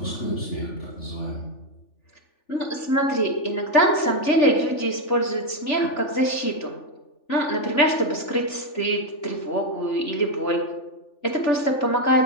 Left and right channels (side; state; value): right; late; 3.4 ms